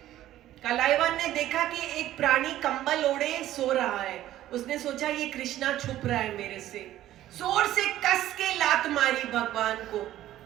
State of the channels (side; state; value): left; quieter; 13.5 dB